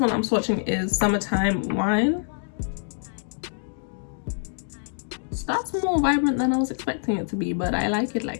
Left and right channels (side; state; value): right; silent; digital silence